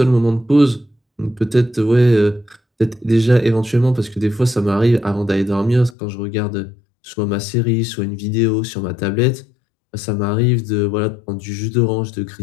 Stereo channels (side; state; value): right; drops out; at 6.0 s